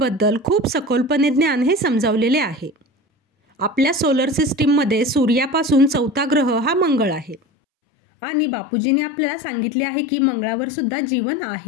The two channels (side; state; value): right; drops out; at 7.4 s